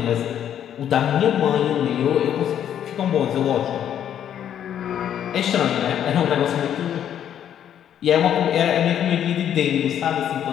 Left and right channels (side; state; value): right; quieter; 9.9 dB